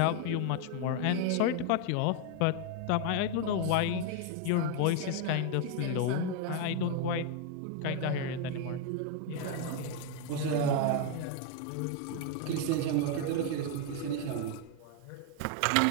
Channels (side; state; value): both; different; correlation 0.01